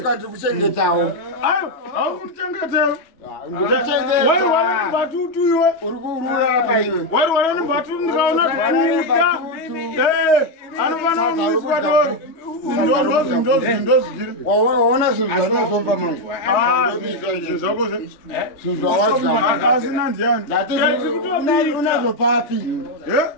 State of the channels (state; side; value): late; right; 3.2 ms